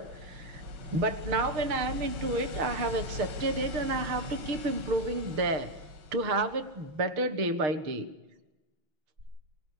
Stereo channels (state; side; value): late; left; 6.6 ms